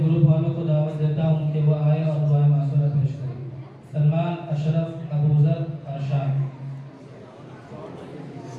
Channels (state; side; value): identical; both; correlation 1.00